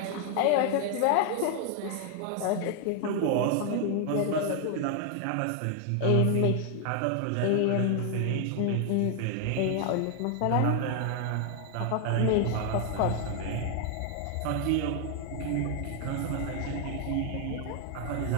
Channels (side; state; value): both; different; correlation 0.00